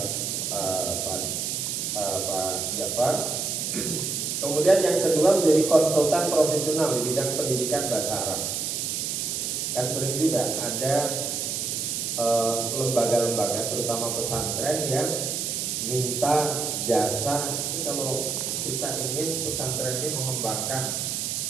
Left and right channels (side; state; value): right; noise; hiss, 1 dB below the sound